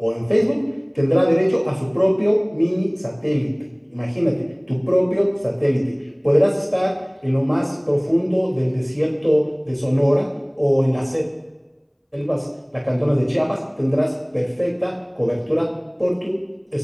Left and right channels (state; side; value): identical; both; correlation 1.00